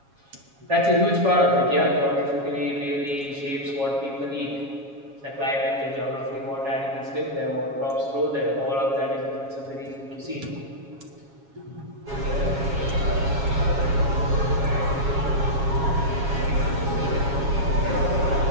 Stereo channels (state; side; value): late; left; 7.3 ms